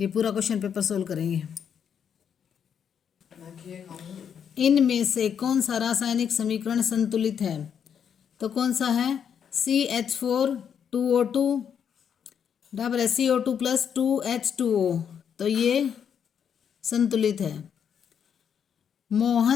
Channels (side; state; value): right; quieter; 7.9 dB